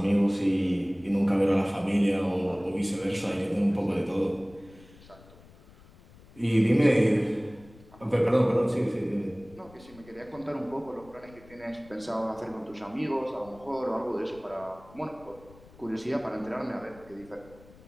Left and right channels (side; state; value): left; noise; rumble, 23 dB below the sound